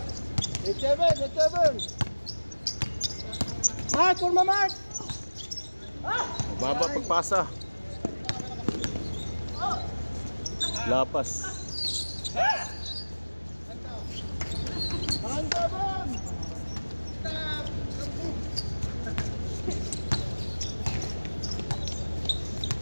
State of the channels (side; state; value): both; inverted; correlation -1.00